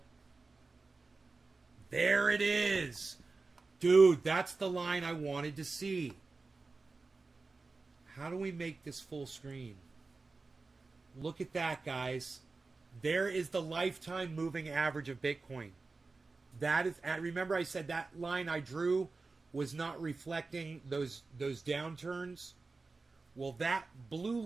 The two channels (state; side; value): quieter; left; 3.8 dB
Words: there it is. Dude, that's the line I wanted to see. How do we make this full screen? Look at that, guys. There is the lifetime moving average of Bitcoin. That is, remember I said that line I drew was not reflecting those downturns? Well, that blue